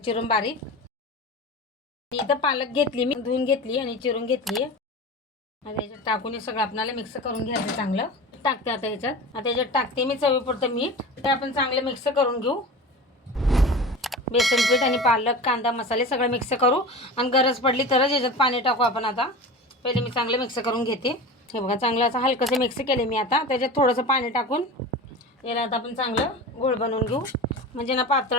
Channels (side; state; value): both; normal; correlation 0.31